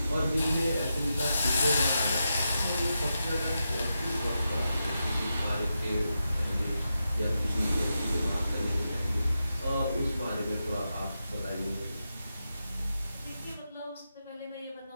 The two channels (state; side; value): inverted; both; correlation -0.88